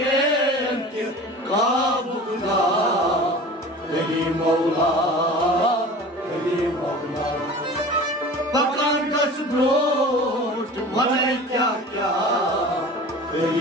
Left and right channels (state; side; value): normal; both; correlation 0.39